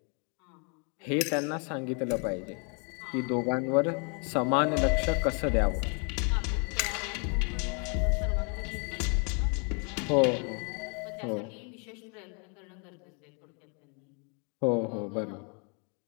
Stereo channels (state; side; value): quieter; right; 37.7 dB